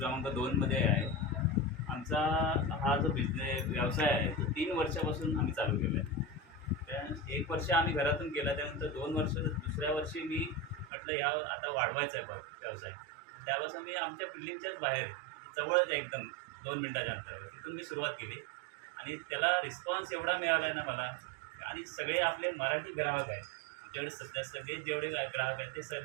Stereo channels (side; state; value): left; drops out; at 10.9 s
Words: 2मध्ये आहे. आमचा हा जो व्यवसाय आहे तो 3 वर्षापासून आम्ही चालू केला आहे. त्या 1 वर्ष आम्ही घरातून केला, त्यानंतर 2 वर्ष, दुसऱ्या वर्षी मी म्हटलं आता वाढवायचा आहे व्यवसाय. त्यापासून मी आमच्या बिल्डिंगच्याच बाहेर जवळच आहे, एकदम 2 मिनिटाच्या अंतरावर, तिथून मी सुरुवात केली. आणि त्याला रिस्पॉन्स एवढा मिळाला आहे ना मला. आणि सगळे आपले मराठी ग्राहक आहेत आमच्याकडे सध्या. सगळे जेवढे ग्राहक आहेत ते